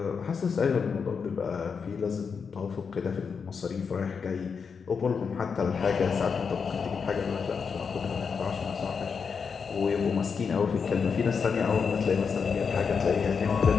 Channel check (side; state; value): right; quieter; 5.9 dB